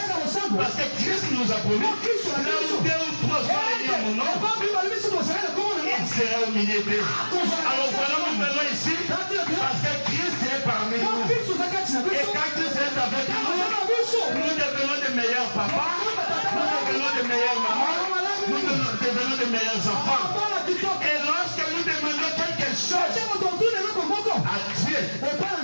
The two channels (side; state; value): both; inverted; correlation -1.00